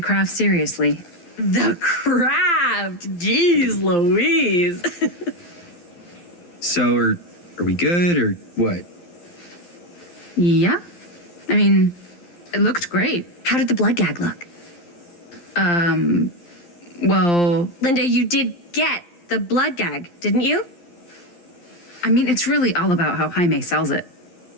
craft seriously. The craft! Jeez Louise! So, are we good, or what? Yeah. I mean, it looked great. How did the blood gag look? Well, Linda, you did get the blood gag, didn't you? I mean, it's really all about how Jaime sells it.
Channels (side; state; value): right; late; 12 ms